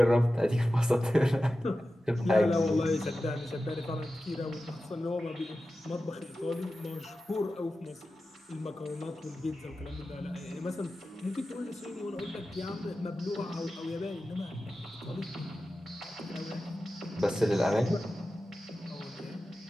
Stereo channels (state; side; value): normal; both; correlation 0.93